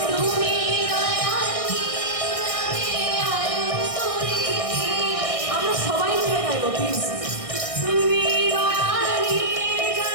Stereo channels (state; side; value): late; right; 1.6 ms